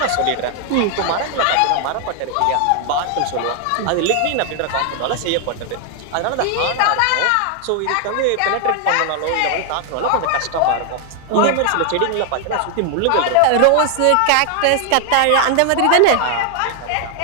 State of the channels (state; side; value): different; both; correlation 0.00